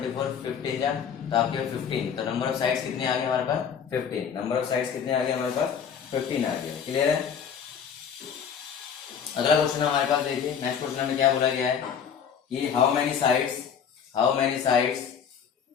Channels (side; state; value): right; quieter; 7.4 dB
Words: 15 जा तो आपके 15। तो नंबर ऑफ साइड्स कितने आ गए हमारे पास 15। नंबर ऑफ साइड्स कितने आ गए हमारे पास 15 आ गया, क्लियर है। अगला क्वेश्चन हमारे पास देखिए, नेक्स्ट क्वेश्चन में क्या बोला गया है कि हाउ मेनी साइड्स